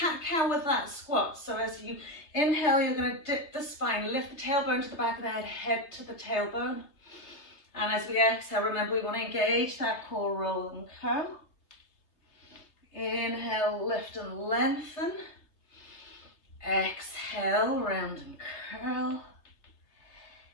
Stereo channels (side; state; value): right; late; 3.3 ms